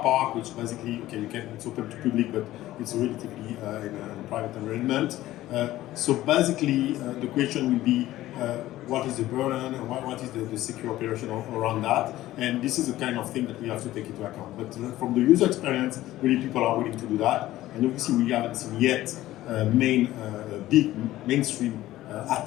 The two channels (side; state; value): right; quieter; 15.3 dB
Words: park, which basically it's open to public, but it's relatively in a private environment. So basically, the question will be, what is the burden, and what is the secure operation around that? And this is the kind of thing that we have to take into account. But from the user experience, really people are willing to do that. And obviously we haven't seen yet big mainstream